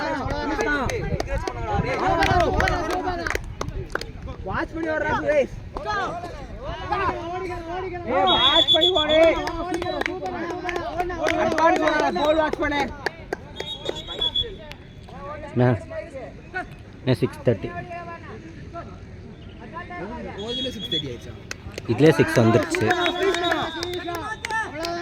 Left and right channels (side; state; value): both; identical; correlation 1.00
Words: வாட்ச் பண்ணி ஓடுறா சுரேஷ் வாட்ச் பண்ணி ஓடு அட்வான்ஸ் ஓடுறா கோல் வாட்ச் பண்ணு मैं 6:30 ஓதுல 6:30 ஆயிடுச்சா இதுல 6 வந்துருச்சு